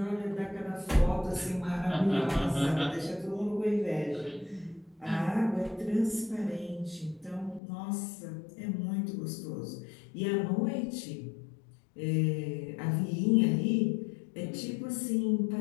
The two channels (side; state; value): right; drops out; at 7.6 s